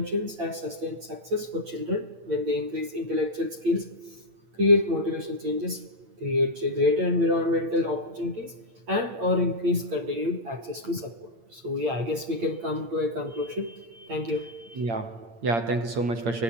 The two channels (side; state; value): left; late; 8.8 ms